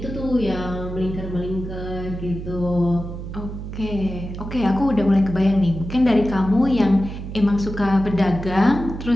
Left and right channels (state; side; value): noise; right; hum, 8 dB below the sound